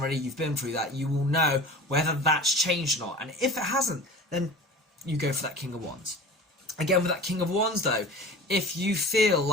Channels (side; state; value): both; normal; correlation 0.38